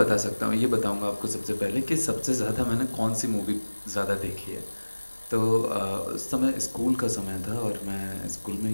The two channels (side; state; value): both; inverted; correlation -1.00